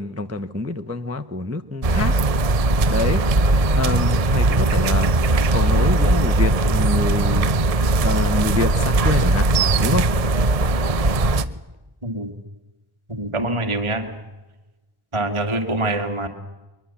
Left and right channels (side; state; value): left; late; 1.6 ms